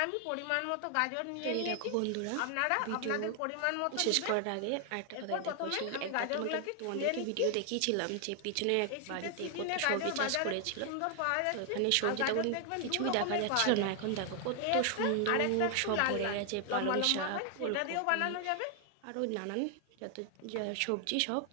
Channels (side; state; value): both; different; correlation 0.00